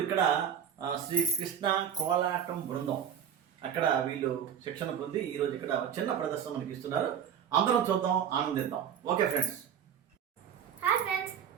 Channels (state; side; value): quieter; left; 8.6 dB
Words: ఇక్కడ శ్రీ కృష్ణ కోలాటం బృందం అక్కడ వీళ్ళు శిక్షణ పొంది ఈరోజు ఇక్కడ చిన్న ప్రదర్శన మనకి ఇస్తున్నారు. అందరం చూద్దాం, ఆనందిద్దాం. Okay friends. హాయ్ ఫ్రెండ్స్,